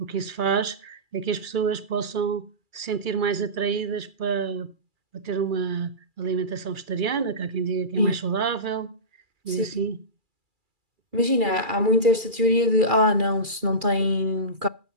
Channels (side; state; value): left; late; 2.4 ms